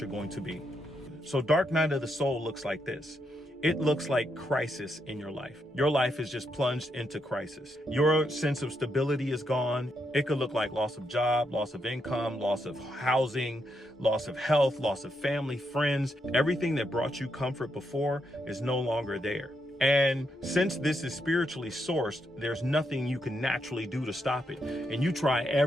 going to be. So dark night of the soul looks like this. It looks like crisis in your life. Your life is just plunged into crisis. Your sense of stability is gone. It could look like loss of job, loss of income, loss of housing, loss of health, loss of family, friends. Everything that brought you comfort before is no longer there. And since this is spiritually sourced, there's nothing you can naturally do to stop it. And you try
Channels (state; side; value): normal; both; correlation 0.80